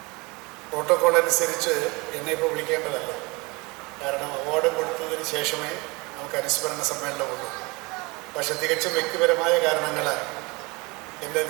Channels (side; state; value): left; quieter; 26.1 dB